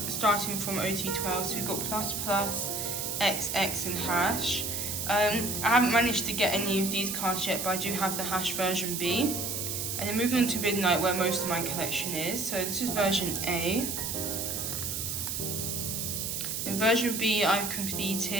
starting from OT12, so we've got Plus Plus, XX and Hash. I haven't managed to get any of these cards yet, but I do have the Hash version B. And then moving on to Midnight, where most of my collection is. So this is version A. In version B, I've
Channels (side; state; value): right; noise; hiss, 2 dB below the sound